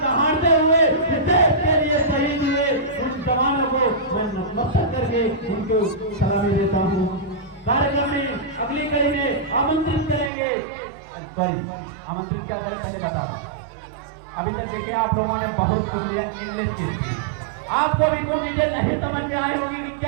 दहाड़ते हुए इस देश के लिए शहीद हुए उन जवानों को मैं नमस्कार करके उनको सलामी देता हूँ। कार्यक्रम में अगली कड़ी में आमंत्रित करेंगे, आमंत्रित क्या करें पहले बता। अभी तक देखिए आप लोगों ने बहुत इंग्लिश की थी, आपको भी कुछ चीजें नहीं समझ में आई होगी कि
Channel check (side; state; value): left; drops out; at 10.3 s